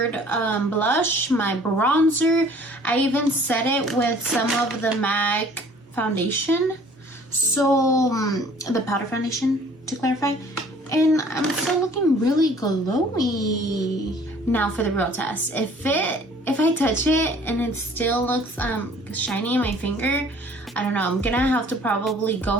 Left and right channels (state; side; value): normal; both; correlation 0.53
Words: blush, my bronzer. I even set it with some of the MAC foundation. So, the powder foundation, to clarify. And I'm still looking really glowy. Now for the real test. If I touch it and it still looks shiny in my finger, I don't know, I'm gonna have to probably go